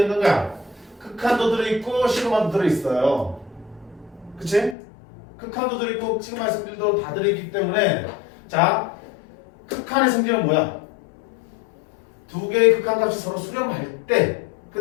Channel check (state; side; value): drops out; right; at 4.8 s